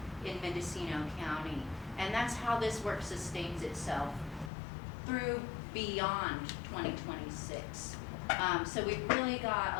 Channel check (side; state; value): right; drops out; at 4.5 s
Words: in Mendocino County. And that's how this work sustains itself through beyond 2026. So we've really got